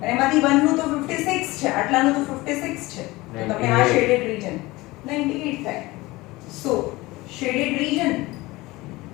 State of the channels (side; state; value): right; quieter; 20.6 dB